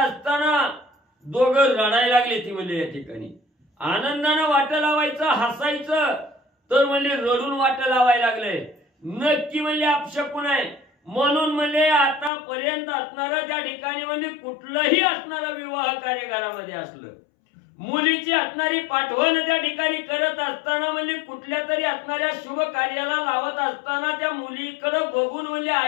दोघं रडायला लागले. ती म्हणजे या ठिकाणी आनंदानं वाट लावायचं हसायचं तर म्हणजे रडून वाट लावायला लागले. नक्की म्हणजे अपशकुन आहे. म्हणून म्हणजे आतापर्यंत असणारं त्या ठिकाणी म्हणजे कुठलंही असणारं विवाह कार्यक्रमामध्ये असलं मुलीची असणारी पाठवण त्या ठिकाणी करत असताना म्हणजे कुठल्या तरी असणाऱ्या शुभ कार्याला लावत असताना त्या मुलीकडे बघून म्हणजे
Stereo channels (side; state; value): right; drops out; at 12.3 s